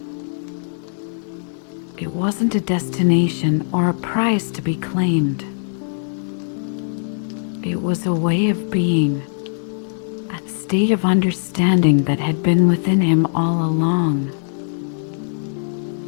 It wasn't a destination or a prize to be claimed. It was a way of being, a state of understanding that had been within him all along.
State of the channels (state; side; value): silent; right; digital silence